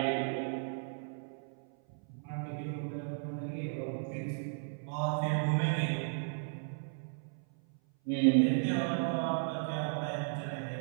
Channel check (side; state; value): left; silent; 54 dB below the other